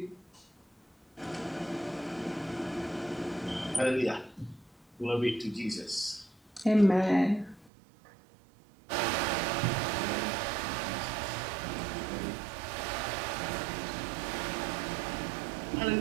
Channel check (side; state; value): left; drops out; at 7.7 s